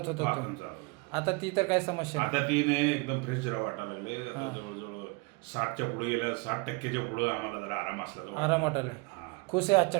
होतं वाकून तुम्ही. चालत. आता ती तर काय समस्या नाही. आता ती नाही एकदम फ्रेश जरा वाटायला लागले आता जवळजवळ 60च्या पुढे गेल्या 60%च्या पुढे आम्हाला जरा आराम असला आराम वाटायला खुश आहे आजच्या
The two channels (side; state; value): left; quieter; 28.4 dB